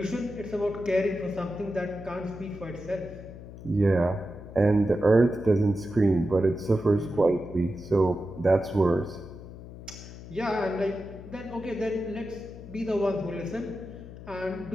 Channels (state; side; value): noise; left; hum, 14 dB below the sound